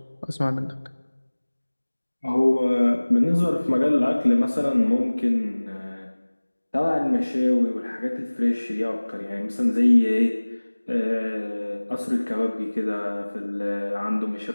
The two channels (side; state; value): both; inverted; correlation -1.00